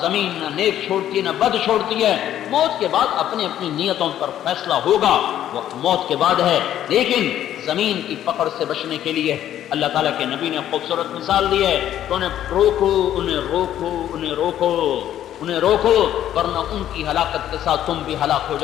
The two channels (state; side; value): quieter; right; 11.5 dB